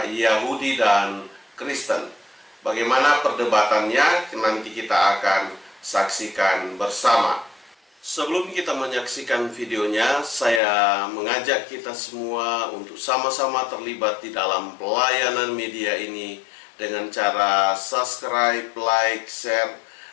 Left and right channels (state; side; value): drops out; right; at 10.6 s